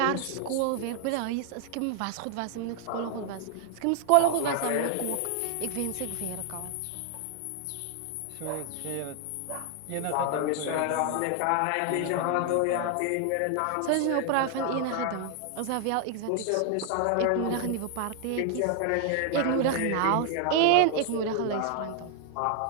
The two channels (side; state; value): both; different; correlation 0.00